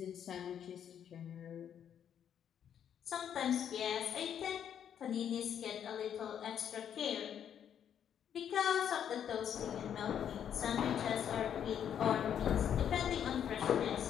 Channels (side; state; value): right; quieter; 9.0 dB